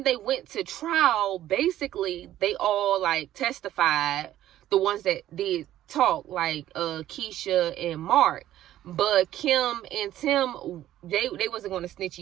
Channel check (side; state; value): left; quieter; 13.0 dB